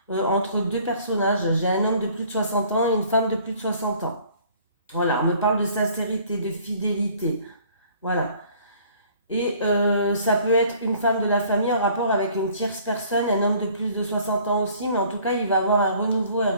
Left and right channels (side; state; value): both; inverted; correlation -0.55